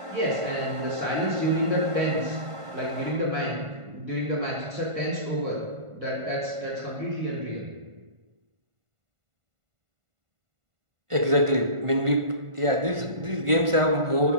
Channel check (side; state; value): left; late; 1.5 ms